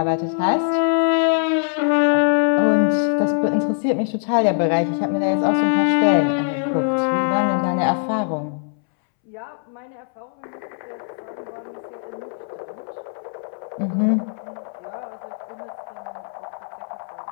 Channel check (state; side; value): silent; right; 64 dB below the other